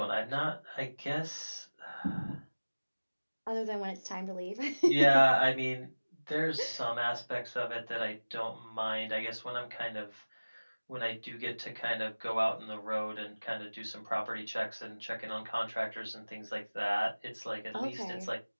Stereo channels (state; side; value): inverted; both; correlation -1.00